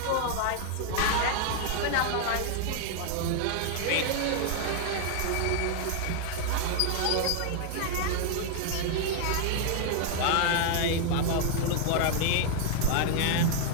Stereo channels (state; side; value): different; both; correlation 0.00